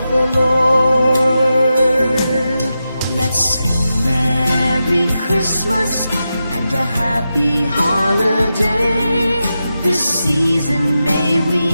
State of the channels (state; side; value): inverted; both; correlation -0.90